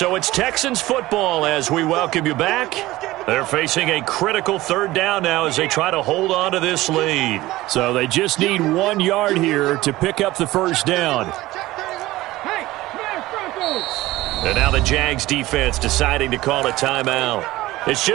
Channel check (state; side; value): quieter; left; 17.7 dB